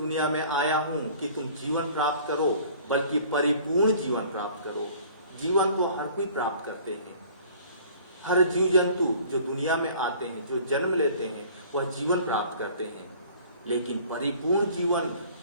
में आया हूं कि तुम जीवन प्राप्त करो, बल्कि परिपूर्ण जीवन प्राप्त करो। जीवन तो हर कोई प्राप्त करते हैं। हर जीव जंतु जो दुनिया में आते हैं, जो जन्म लेते हैं, वह जीवन प्राप्त करते हैं। लेकिन परिपूर्ण जीवन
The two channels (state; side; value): inverted; both; correlation -0.50